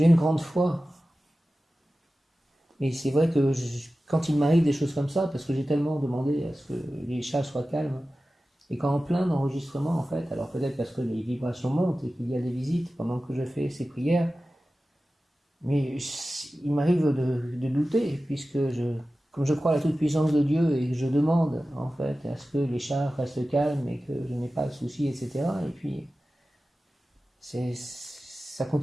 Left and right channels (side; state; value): both; normal; correlation 0.95